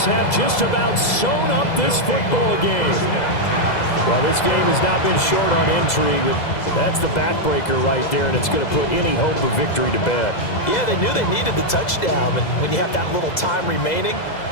have just about sewn up this football game. Well, this game has not been short on intrigue. That's the backbreaker right there, and it's going to put any hope of victory to bed. Yeah, they knew they needed the touchdown, and when you have that little time remaining,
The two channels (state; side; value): late; right; 2.0 ms